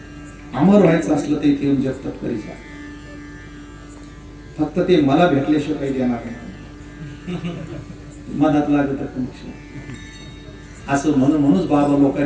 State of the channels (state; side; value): identical; both; correlation 1.00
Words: अमर व्हायचं असलं तर इथे येऊन जगतात करी जा, फक्त ते मला भेटल्याशिवाय काही देणार नाही, मनात लागत असं म्हणूनच बाबा